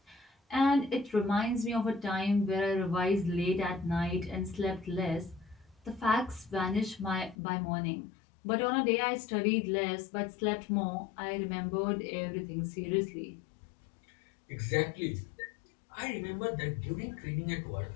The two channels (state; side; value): drops out; right; at 7.4 s